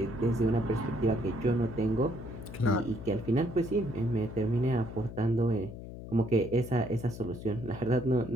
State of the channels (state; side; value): noise; left; hum, 11 dB below the sound